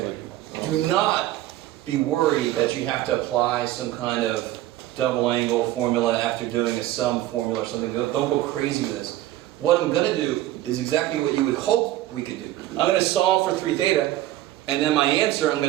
Do not be worried that you have to apply some kind of double angle formula after doing a sum formula or something. Don't go crazy with this. What I'm going to do is exactly what you would hope we could do. I'm going to solve for 3 theta, and then my answer I'm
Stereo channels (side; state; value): left; quieter; 14.8 dB